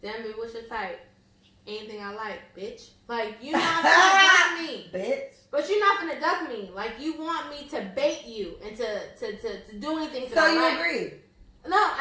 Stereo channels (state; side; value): identical; both; correlation 1.00